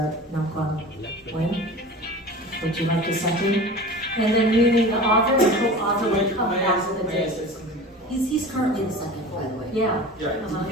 Nam Quang Nguyen, would you like to second? And then meaning the author and co-author will come back with a May I date. say something? He's currently the second, by the way. Yeah. Yeah, Uh-huh.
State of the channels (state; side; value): normal; both; correlation 0.36